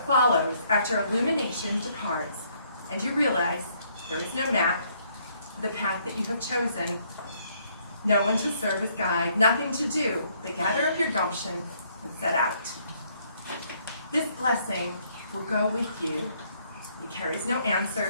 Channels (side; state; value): both; inverted; correlation -0.68